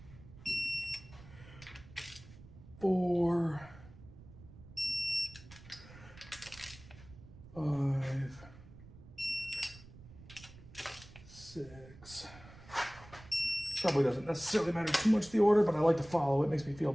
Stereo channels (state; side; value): noise; right; rumble, 19 dB below the sound